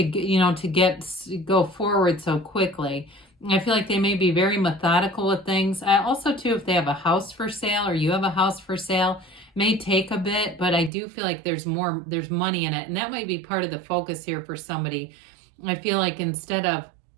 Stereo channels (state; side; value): drops out; left; at 10.9 s